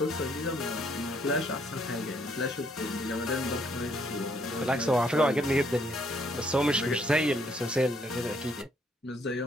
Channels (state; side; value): normal; both; correlation 0.69